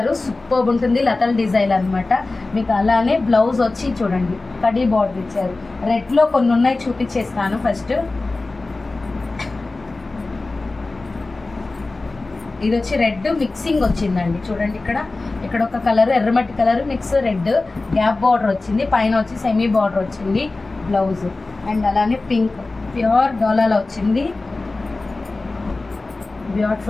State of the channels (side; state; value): right; quieter; 3.3 dB